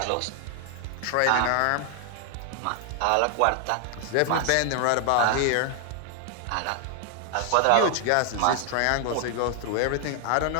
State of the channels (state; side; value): different; both; correlation 0.00